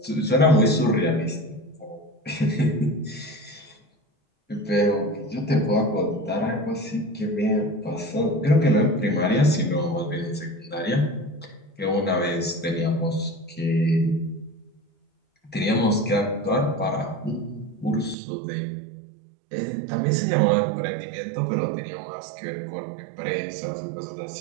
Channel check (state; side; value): drops out; left; at 18.2 s